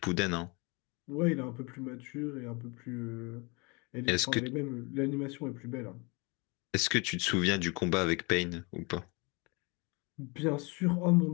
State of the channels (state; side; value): quieter; right; 29.2 dB